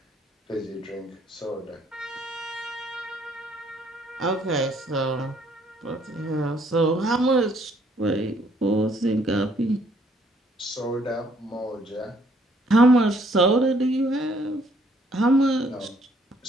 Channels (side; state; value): both; normal; correlation 0.65